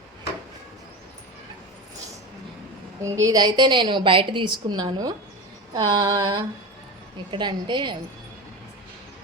ఇంక ఇదైతే నేను బయట తీసుకున్నాను. ఎక్కడంటే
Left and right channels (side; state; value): both; normal; correlation 0.24